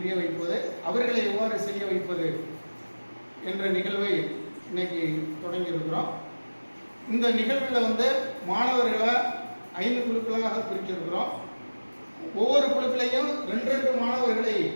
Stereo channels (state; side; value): inverted; both; correlation -1.00